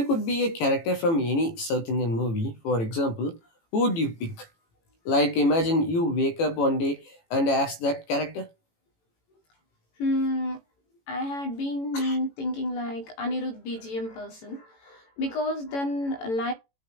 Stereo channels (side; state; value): right; late; 18 ms